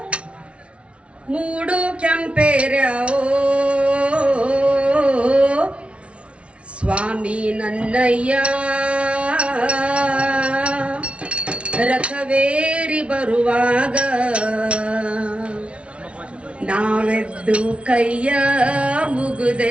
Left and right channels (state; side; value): late; left; 0.061 ms